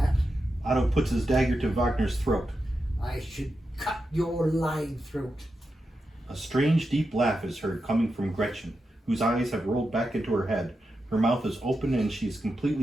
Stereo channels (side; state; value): both; normal; correlation 0.88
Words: Otto puts his dagger to Wagner's throat. I should cut your lying throat. A strange, deep laugh is heard coming from Gretchen, whose eyes have rolled back into her head. Her mouth is open and she is